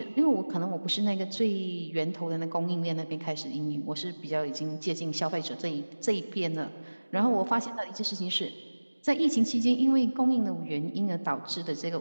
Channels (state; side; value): inverted; both; correlation -1.00